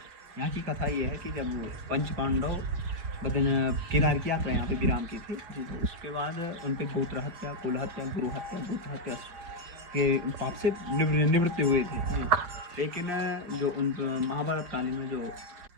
यहाँ की कथा ये है कि जब पंच पांडव केदार की यात्रा यहाँ पे विराम की थी, तो उसके बाद उन पे गोत्र हत्या, कुल हत्या, गुरु हत्या, गोत्र हत्या के पाप से निवृत्त हुए थे। लेकिन जो उन महाभारत कालीन में जो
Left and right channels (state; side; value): late; left; 5.8 ms